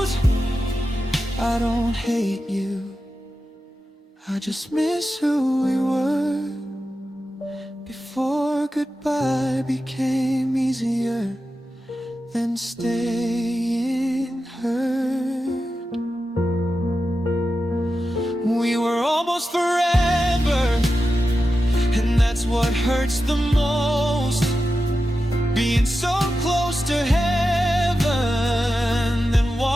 I don't hate you, I just miss who we were before goodbye became easier than staying hurt. We were almost forever, and that's what hurts the most. Being so close to heaven, then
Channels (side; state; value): both; normal; correlation 0.91